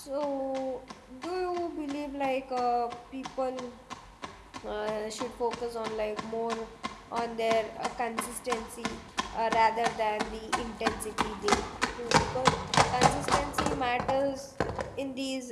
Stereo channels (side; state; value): both; identical; correlation 1.00